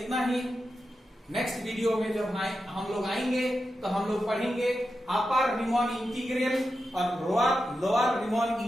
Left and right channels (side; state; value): both; normal; correlation 0.89